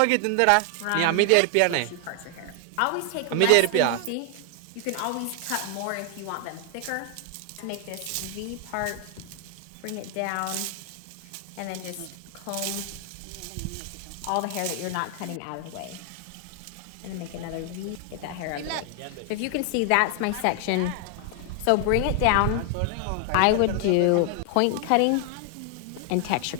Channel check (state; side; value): different; both; correlation 0.00